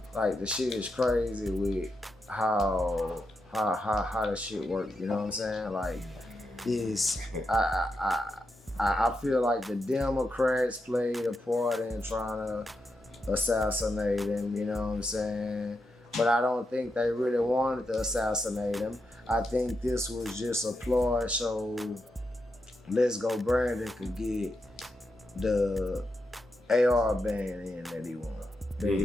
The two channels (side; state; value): both; normal; correlation 0.85